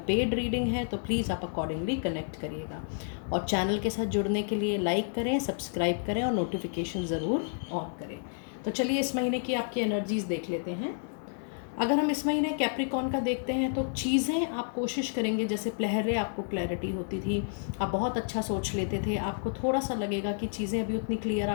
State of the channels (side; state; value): right; silent; 58 dB below the other